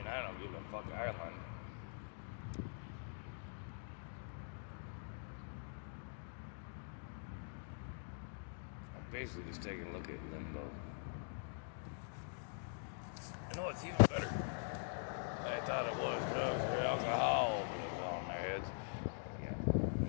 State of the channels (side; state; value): right; silent; digital silence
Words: I don't give a fuck Ireland. I'm basically just taking a look at Limbo. You know what's even better? They thought it was drugs or alcohol, but it was on their heads. Yeah, I'm